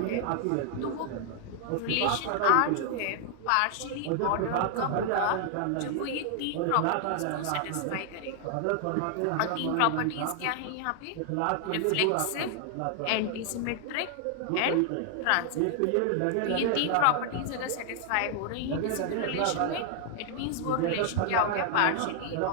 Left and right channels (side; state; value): both; different; correlation 0.00